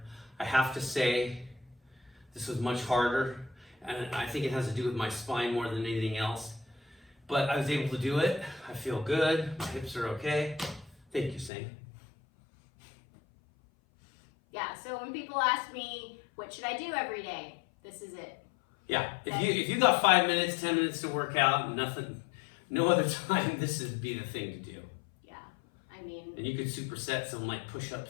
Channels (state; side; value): drops out; right; at 11.5 s